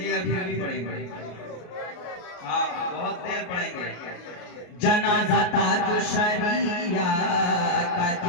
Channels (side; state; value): right; late; 33 ms